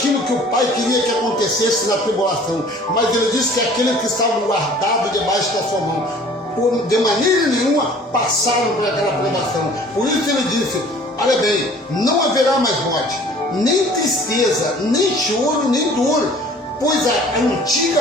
que o Pai queria que acontecesse na tribulação. Mas ele disse que aqueles que estavam guardados debaixo da sua mão, de maneira nenhuma passaram por aquela provação. Por isso ele disse, olha bem, não haverá mais morte, nem tristeza, nem choro, nem dor, pois a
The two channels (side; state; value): both; normal; correlation 0.50